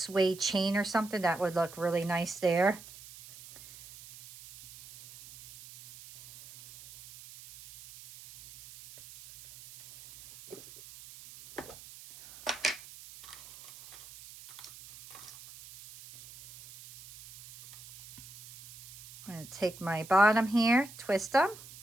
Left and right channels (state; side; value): noise; right; hiss, 18 dB below the sound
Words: chain or something. That would look really nice there. I'm going to take my bottom here, twist them.